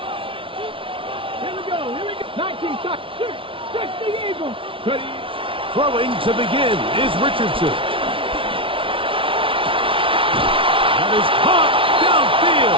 Here we go. 19 shots. 6 the Eagles. Ready. Throwing to begin is Richardson. That is caught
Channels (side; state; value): left; late; 0.25 ms